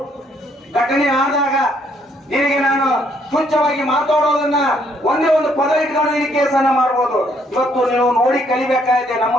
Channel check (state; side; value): normal; both; correlation 0.68